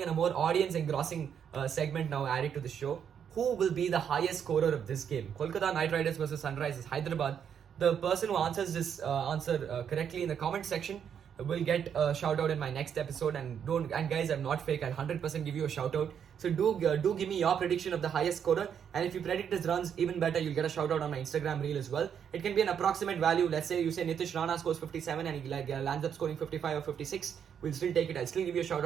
and a more audience engrossing segment now added to the show. who will be the highest scorer of this game. Kolkata Knight Riders versus Sunrisers Hyderabad. The person who answers this answer correctly in the comment section will get a shout out in my next episode. And guys, I'm not fake. I'll 100% give you a shout out. So do give me your prediction of the highest scorer. And if you predict his runs, even better, you'll get a shout out on my Instagram reel as well. It can be an approximate value. Let's say you say Nitish Rana scores 57 and he lands up scoring 55 or 56. We'll still take it. I'll still give you a shout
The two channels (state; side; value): quieter; left; 8.1 dB